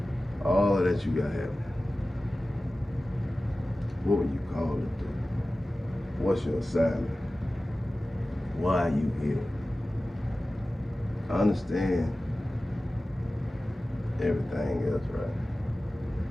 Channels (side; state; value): both; normal; correlation 0.96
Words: all of that you got happening. What would you call it, dude? What's your assignment? Why are you here? I understand everything else, right?